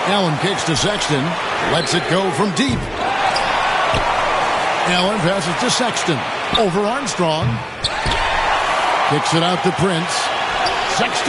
Allen kicks to Sexton. Lets it go from deep. Allen passes to Sexton. Over Armstrong. Kicks it out to Prince.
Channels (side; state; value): both; identical; correlation 1.00